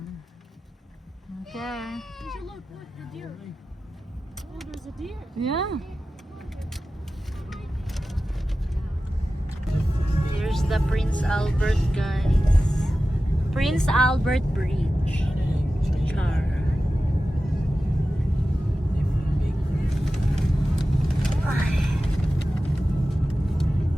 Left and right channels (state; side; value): normal; both; correlation 0.94